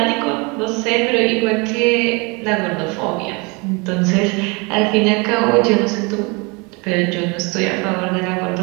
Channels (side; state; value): left; quieter; 29.0 dB